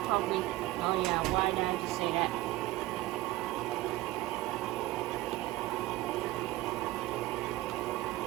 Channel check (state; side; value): quieter; left; 17.7 dB